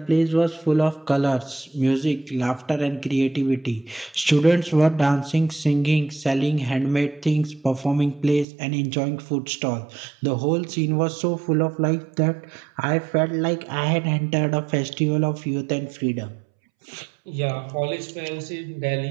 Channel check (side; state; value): left; drops out; at 8.5 s